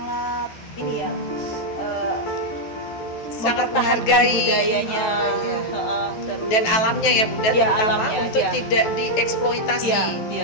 ini ya, Sangat mempertahankan menghargai budayanya, Oh, iya. terus Dan alamnya ya, Bunda, Ya, terutama alamnya, untuk ya. tidak dieksploitasi. ya,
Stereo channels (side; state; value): right; late; 14 ms